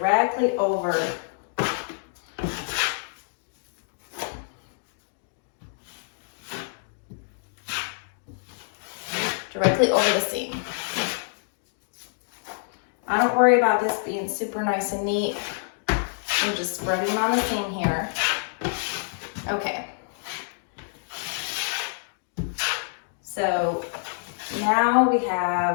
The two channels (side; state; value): right; silent; digital silence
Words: over the seam. I don't worry about this being super nice and neat. I'm just spreading on the seam here. Okay. So now we